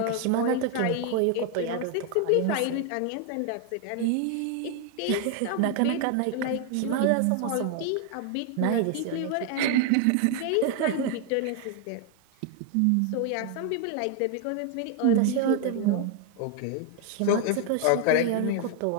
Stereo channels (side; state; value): both; different; correlation 0.01